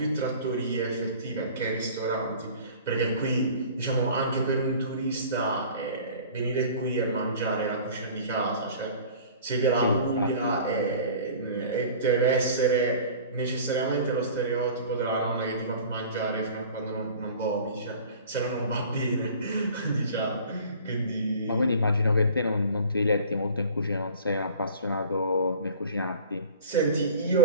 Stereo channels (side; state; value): both; inverted; correlation -0.44